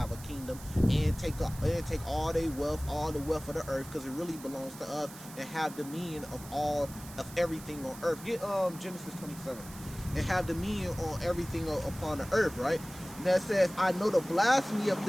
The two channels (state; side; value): noise; right; hiss, 16 dB below the sound